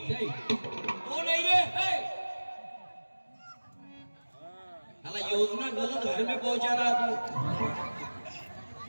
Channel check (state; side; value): inverted; both; correlation -1.00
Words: जय. तो नाही रे, योजना गलत घर में पहुंचा रहा